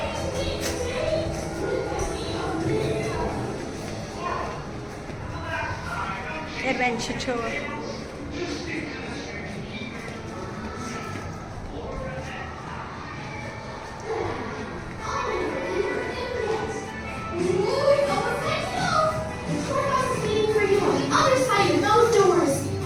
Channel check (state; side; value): identical; both; correlation 1.00